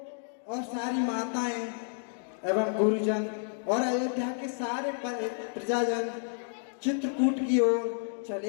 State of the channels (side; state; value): right; silent; digital silence